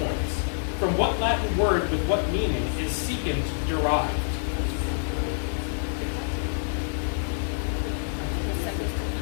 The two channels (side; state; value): right; silent; digital silence